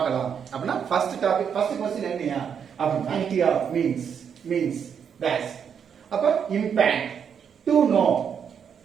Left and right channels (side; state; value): left; quieter; 7.5 dB